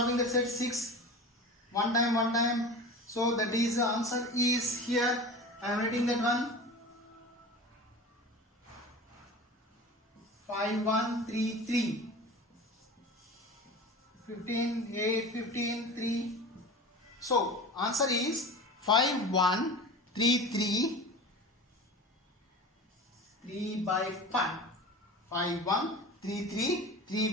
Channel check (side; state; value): both; normal; correlation 0.34